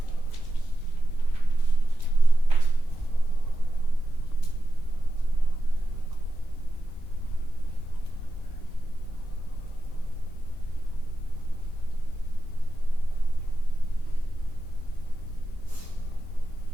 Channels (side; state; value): both; normal; correlation 0.90